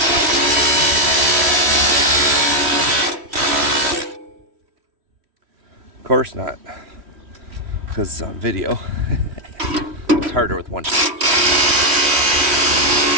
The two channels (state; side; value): late; left; 3.1 ms